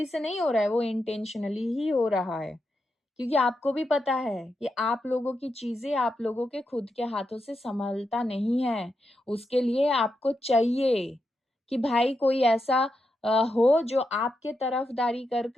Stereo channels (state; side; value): normal; both; correlation 0.85